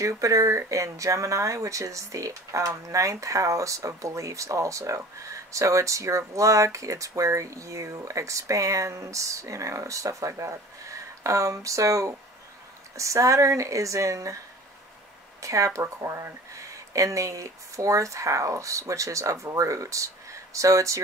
in Gemini, which is the 9th house of beliefs also. So it's your luck, it's where you expand, stuff like that. So Saturn is in Capricorn in the 4th house, which is of roots. So it's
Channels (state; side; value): normal; both; correlation 0.42